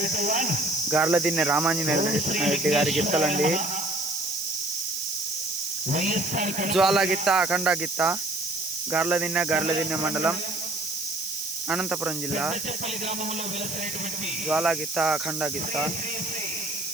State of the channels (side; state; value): right; noise; hiss, 6 dB below the sound